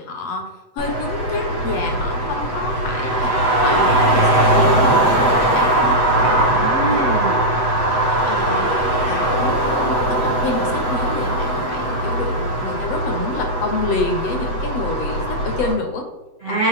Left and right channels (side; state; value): right; late; 8.0 ms